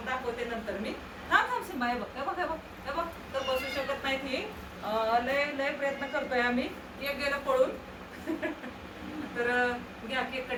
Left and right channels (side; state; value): both; identical; correlation 1.00